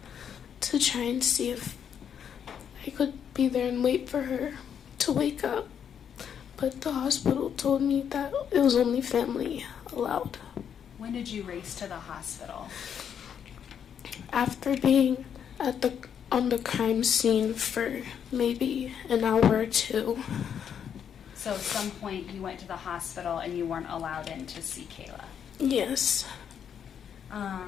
to try and see if I could be there and wait for her to wake up. But the hospital told me that it was only family allowed. When did you race to the hospital? After being on the crime scene for maybe an hour or two. So at some point you went to the hospital and you weren't allowed in to see Kayla? Yes.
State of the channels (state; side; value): quieter; right; 8.2 dB